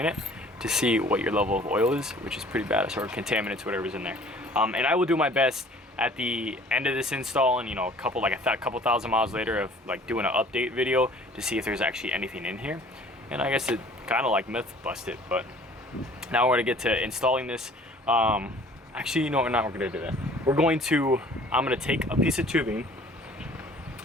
it to see what your level of oil is, which is pretty bad, or contaminants, whatever's in there. And I will do my best at the end of this install, and you know, a couple thousand miles later, of like doing an update video to see if there's actually anything in here. And I guess it kind of like myth busted, but now we're gonna get to installing this. Actually, you know what, we're gonna do that. I'm gonna take a piece of tubing,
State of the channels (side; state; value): both; normal; correlation 0.51